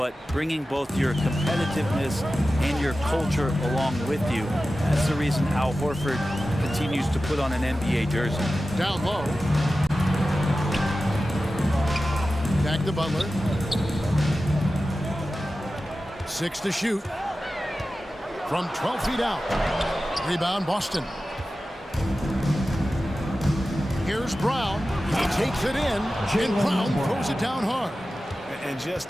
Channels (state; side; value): normal; both; correlation 0.94